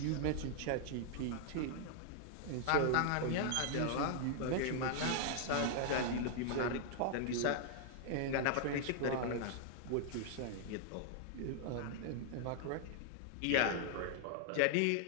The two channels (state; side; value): different; both; correlation 0.00